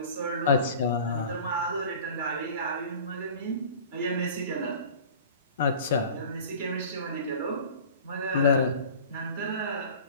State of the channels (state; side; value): inverted; both; correlation -0.41